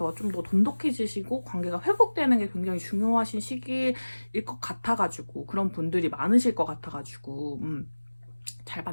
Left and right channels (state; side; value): inverted; both; correlation -1.00